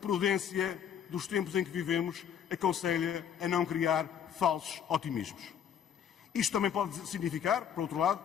dos tempos em que vivemos aconselha a não criar falsos otimismos. Isto também pode significar, por outro lado,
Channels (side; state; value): right; quieter; 8.6 dB